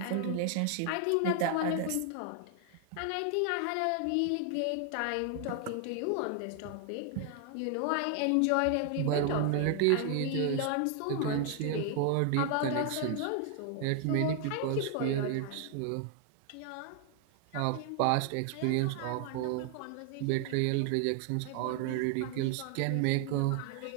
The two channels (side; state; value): both; different; correlation 0.00